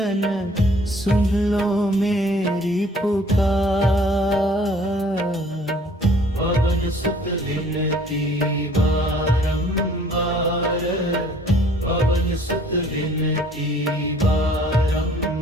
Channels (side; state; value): both; normal; correlation 0.56